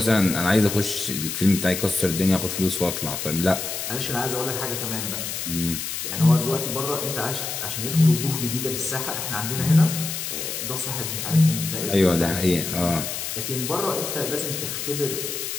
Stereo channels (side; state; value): left; noise; hiss, 4 dB below the sound